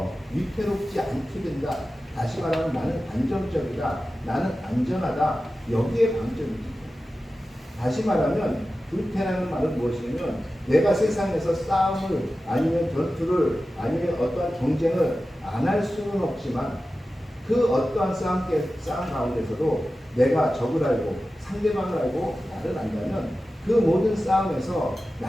위태롭지 않게 된다. 다시 말하면 나는 안정적이다. 나는 안전하다. 여기에 방점이 찍혀요. 다시 말하면 불패라는 말은 무엇이냐면 내가 세상에서 싸움을 아니면 전투를 아니면 어떠한 경쟁을 안 할 수는 없지만 그 어떠한 싸움 가운데서도 내가 적을 알고 상대방을 알고 나를 안다면 그 모든 싸움에서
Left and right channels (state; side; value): normal; both; correlation 0.94